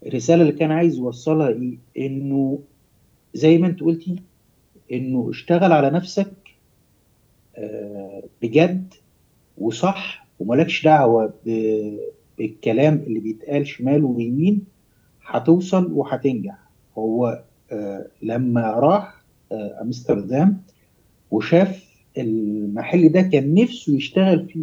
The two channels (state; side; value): identical; both; correlation 1.00